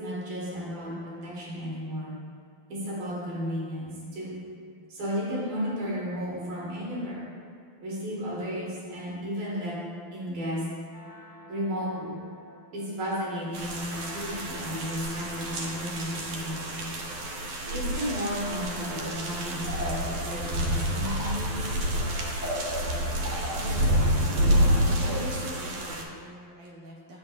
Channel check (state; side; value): late; left; 12 ms